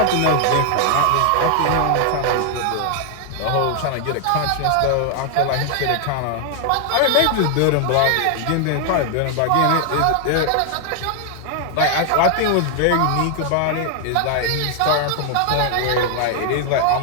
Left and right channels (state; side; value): different; both; correlation 0.00